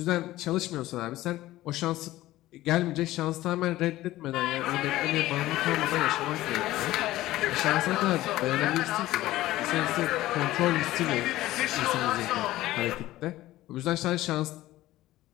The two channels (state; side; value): quieter; right; 16.1 dB